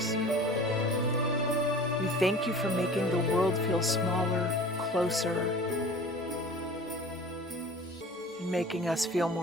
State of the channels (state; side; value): normal; both; correlation 0.42